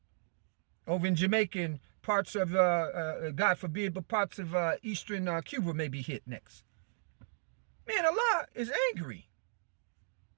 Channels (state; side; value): silent; left; digital silence